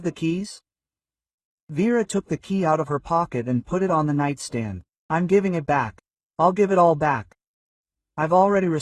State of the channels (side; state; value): both; identical; correlation 1.00